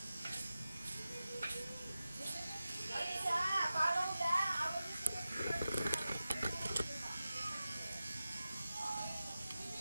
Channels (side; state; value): both; inverted; correlation -0.94